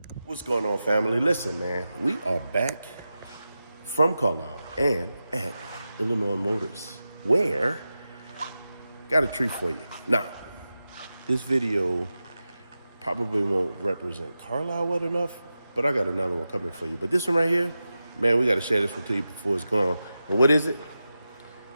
What's going on, family? Listen, man, we are back from Carlisle and at Illinois Motors, where got a treat for you. Now, this video probably won't represent Carlisle well enough, but I got another one coming for you. But this one right here, man, we got to share this one to you before it's gone. And what is it?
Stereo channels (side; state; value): both; inverted; correlation -0.92